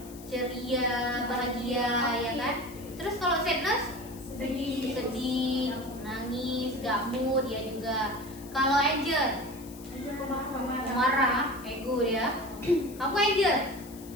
Ceria, bahagia, ya kan? Terus kalau sadness? Sedih, nangis, gak mood, ya juga. Kalau anger? Marah, ego ya. Kamu anger?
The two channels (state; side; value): noise; left; hiss, 19 dB below the sound